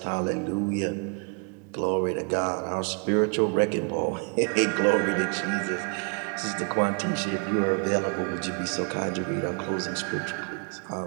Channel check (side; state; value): left; quieter; 37.6 dB